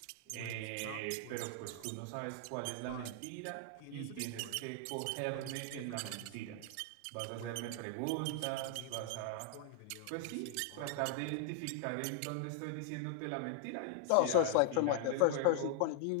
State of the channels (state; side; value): different; both; correlation 0.00